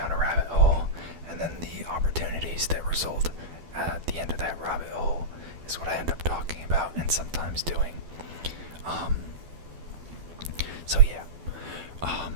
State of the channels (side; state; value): left; late; 12 ms